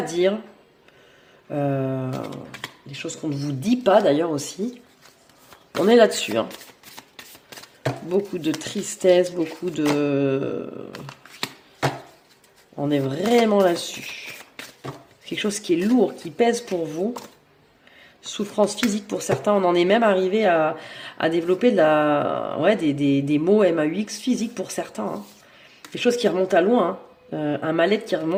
dire. Des choses qu'on ne vous dit pas d'ailleurs aussi. On est là-dessus. Hein. Beaucoup de tristesse, beaucoup de... On est vraiment là-dessus. Quelque chose qui est lourd, qui pèse pour vous. Souffrance physique pour certains. On en est même arrivé à développer des mots MAUX physiques pour certains. Hein. Des choses qui remontent à loin. Hein. Un mal-être qui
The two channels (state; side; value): identical; both; correlation 1.00